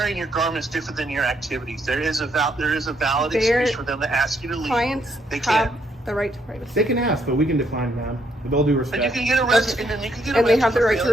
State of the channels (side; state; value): both; normal; correlation 0.73